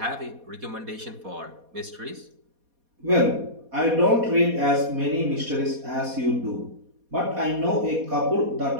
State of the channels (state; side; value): late; left; 4.2 ms